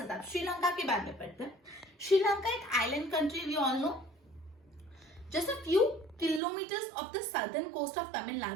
था। श्रीलंका के बारे में पढ़ते हैं। श्रीलंका एक island country, we all know, just a few kilometers of the southern coast of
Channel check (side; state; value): left; drops out; at 6.4 s